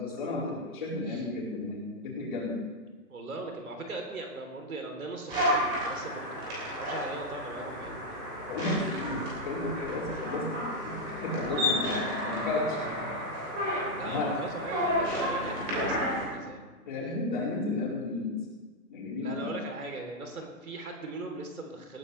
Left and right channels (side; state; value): both; normal; correlation 0.01